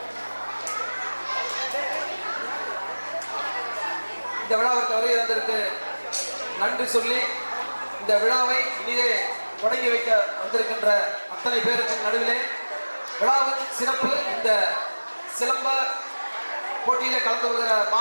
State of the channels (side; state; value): both; inverted; correlation -1.00